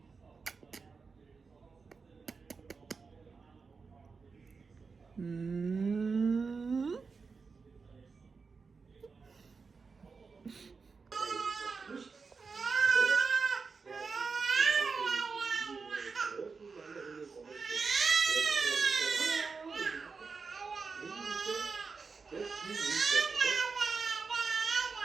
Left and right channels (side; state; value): left; quieter; 4.9 dB